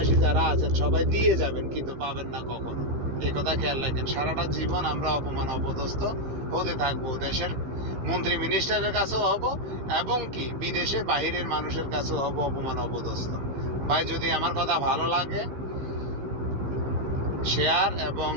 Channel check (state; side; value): late; left; 15 ms